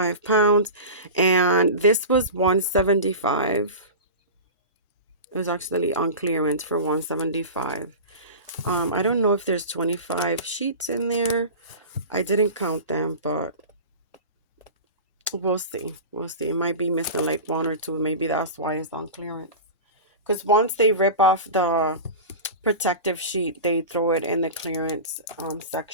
pounds. And this was $175. It was actually on clearance for $175. I don't know if there's 25 sheets in there. I didn't count them, but we'll see. We'll see. It might be missing like 1 or 2. Maybe that's why it's on clearance. Because once they rip off the protective sheet, they throw it in the clearance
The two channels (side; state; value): both; inverted; correlation -0.30